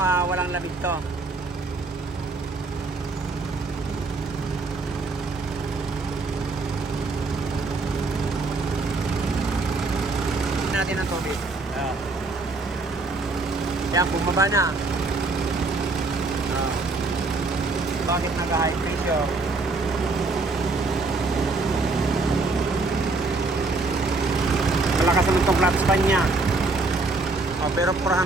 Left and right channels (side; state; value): left; quieter; 3.5 dB